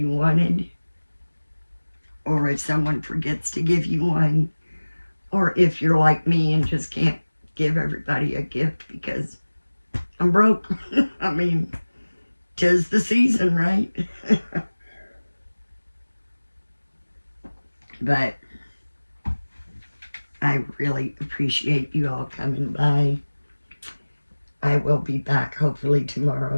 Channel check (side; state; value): both; inverted; correlation -1.00